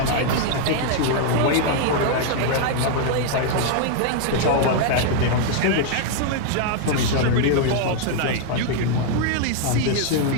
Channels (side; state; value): both; different; correlation 0.00